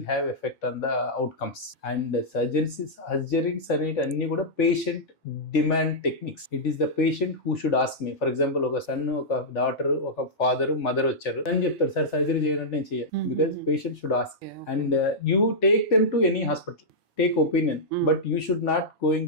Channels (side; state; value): both; normal; correlation -0.10